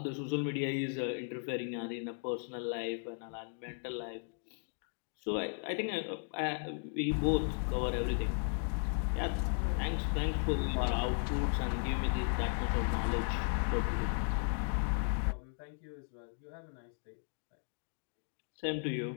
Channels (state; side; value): silent; right; 54 dB below the other